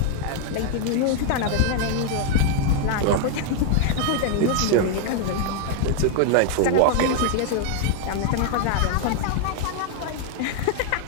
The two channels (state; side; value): different; both; correlation 0.00